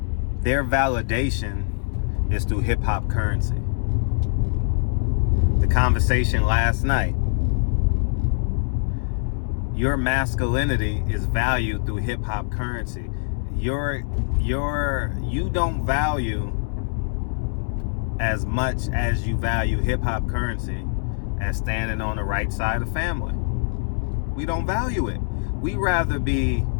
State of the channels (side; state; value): right; silent; 63 dB below the other